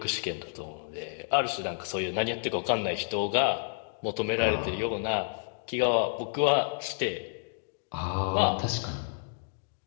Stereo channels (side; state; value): right; silent; digital silence